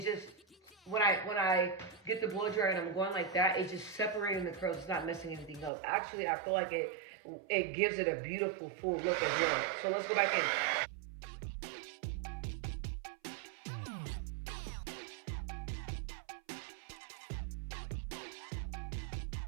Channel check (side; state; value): left; drops out; at 5.7 s